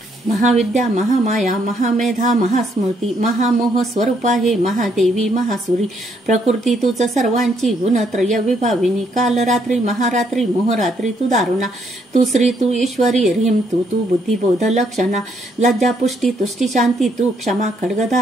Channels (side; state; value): both; normal; correlation 0.72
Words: महाविद्या महामाया महामेधा महास्मृती महामोह स्वरूपा हे महादेवी महासुरी प्रकृती तुझ सर्वांची गुणत्रय विभाविनी काल रात्री महारात्री मोहरात्री तू दारुणा तू श्री तू ईश्वरी ह्रीम तू बुद्धिबोध लक्षणा लज्जा पुष्टी तुष्टी शांती तू क्षमा